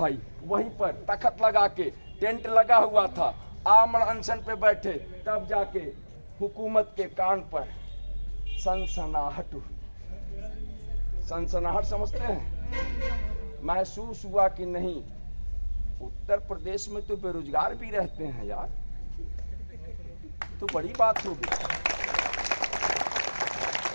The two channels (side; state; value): both; inverted; correlation -1.00